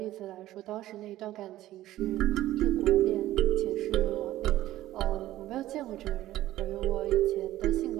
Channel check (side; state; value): left; quieter; 14.8 dB